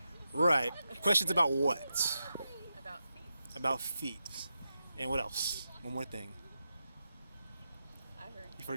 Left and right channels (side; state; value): both; inverted; correlation -0.88